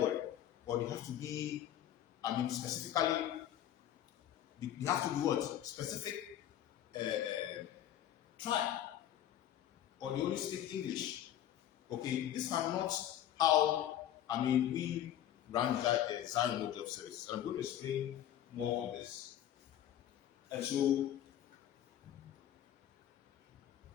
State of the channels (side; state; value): right; quieter; 11.3 dB